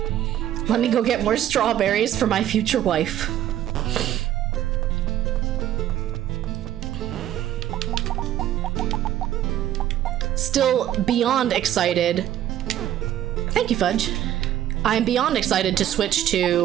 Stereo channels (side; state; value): left; quieter; 12.0 dB